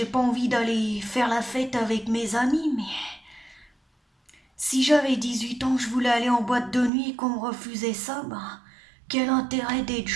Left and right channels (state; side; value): drops out; left; at 6.9 s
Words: pas envie d'aller faire la fête avec mes amis, mais si j'avais 18 ans, je voulais aller en boîte de nuit et qu'on me refusait ça, ben, quel intérêt d'être